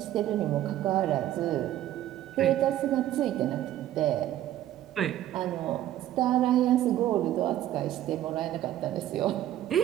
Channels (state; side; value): quieter; left; 12.9 dB